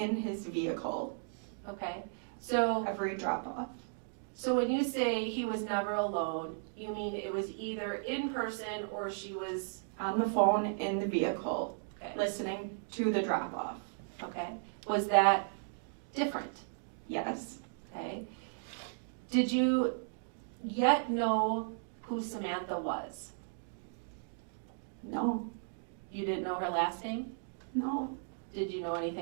his vehicle Okay. So every drop off. So when you say he was never alone, you mean it was either in person or she was, On the phone in the vehicle, okay, listening to the drop off. okay. Was that different? Yes. Okay. Did you yet know who Samantha was? No. You didn't know her last name? No. Did you know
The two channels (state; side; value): silent; left; digital silence